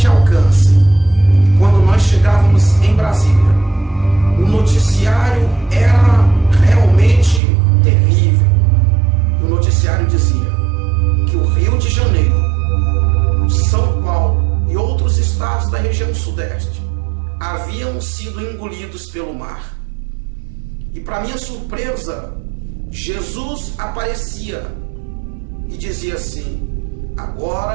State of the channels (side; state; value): left; drops out; at 7.4 s